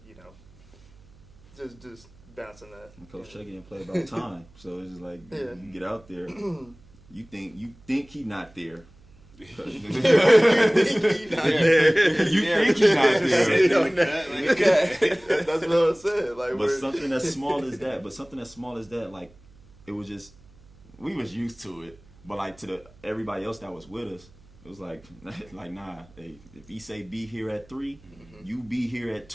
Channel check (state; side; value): noise; right; hum, 26 dB below the sound